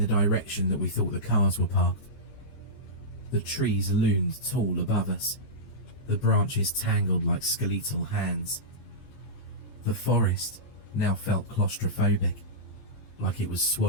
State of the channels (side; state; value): right; late; 14 ms